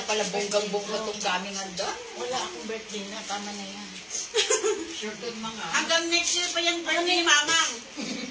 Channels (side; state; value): both; identical; correlation 1.00